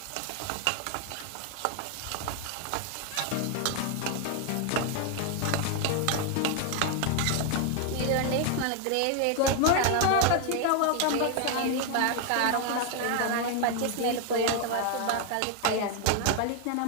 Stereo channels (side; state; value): both; different; correlation 0.00